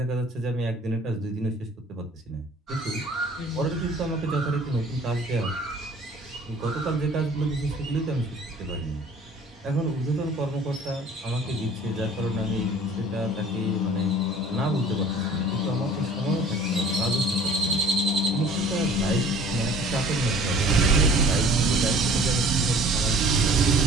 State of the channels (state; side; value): normal; both; correlation 0.48